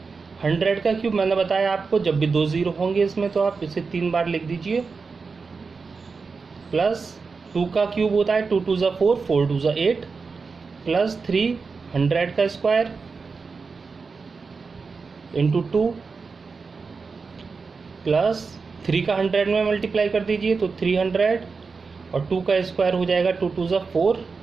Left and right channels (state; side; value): quieter; left; 4.7 dB